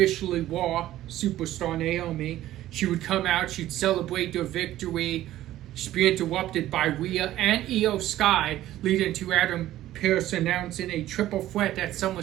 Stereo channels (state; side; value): quieter; left; 14.1 dB